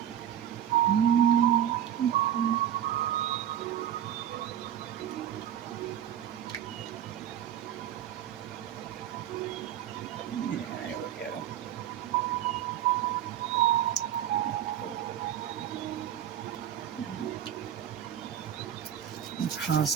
Yeah, there we go. I'm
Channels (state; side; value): quieter; left; 10.3 dB